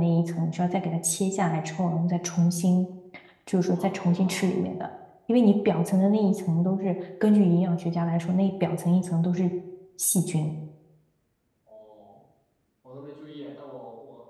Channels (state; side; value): identical; both; correlation 1.00